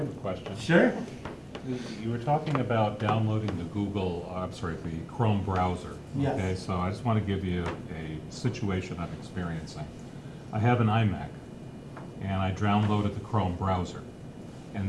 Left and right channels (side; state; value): both; identical; correlation 1.00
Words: a question. Sure. You were talking about downloading the Chrome browser. Yes. Okay, so I just want to give you a situation I'm experiencing. I have an iMac, and I downloaded the Chrome browser.